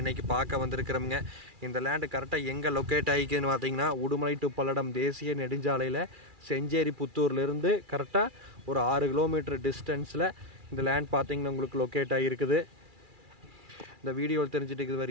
இன்றைக்கி பார்க்க வந்திருக்கிறோமுங்க. இந்த லேண்டு கரெக்டாக எங்கே லொக்கேட் ஆகிக்குதுன்னு பார்த்திங்கன்னா உடுமலை டு பல்லடம் தேசிய நெடுஞ்சாலையில் செஞ்சேரி புத்தூர்லேருந்து கரெக்டாக ஒரு 6 கிலோமீட்டர் டிஸ்டன்ஸில் இந்த லேண்ட் பார்த்திங்கன்னா உங்களுக்கு லொக்கேட் ஆகிருக்குது. இந்த வீடியோவில் தெரிஞ்சுட்டு இருக்குது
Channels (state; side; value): late; left; 2.4 ms